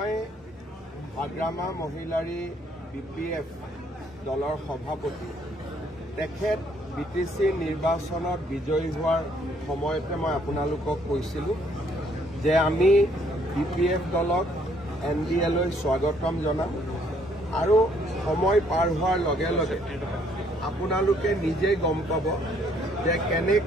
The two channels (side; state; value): both; normal; correlation 0.66